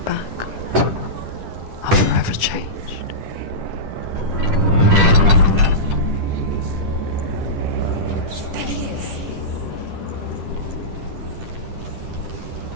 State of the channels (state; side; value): late; left; 10 ms